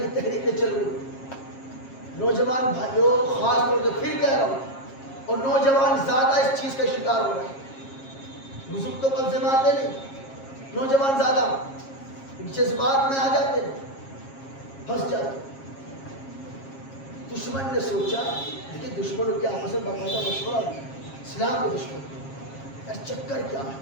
تحریکیں چل رہی ہیں. نوجوان بھائیوں خاص طور سے پھر کہہ رہا ہوں، اور نوجوان زیادہ اس چیز کا شکار ہو رہے ہیں. بزرگ تو قبضے میں آتے نہیں، نوجوان زیادہ جذبات میں آ جاتے ہیں، پھنس جاتے. دشمن نے سوچا لیکن دشمنوں کے آپس میں باقاعدہ مشورہ ہوا اسلام کے دشمن یار چکر کیا ہے،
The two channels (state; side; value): late; right; 7.4 ms